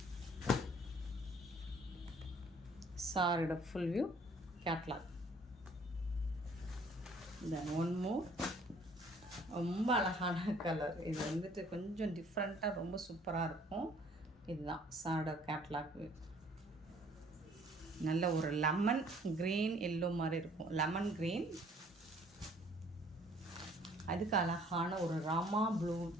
சாரியோட ஃபுல் வியூ, கேட்லாக். தென் ஒன் மோர், ரொம்ப அழகான கலர். இது வந்துட்டு கொஞ்சம் டிஃப்ரெண்ட்டாக ரொம்ப சூப்பராக இருக்கும். இதுதான் சாரோட கேட்லாக் வியூ. நல்ல ஒரு லெமன் க்ரீன் எல்லோ மாதிரி இருக்கும், லெமன் க்ரீன். அதுக்கு அழகான ஒரு ராமா ப்ளூ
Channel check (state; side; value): normal; both; correlation 0.58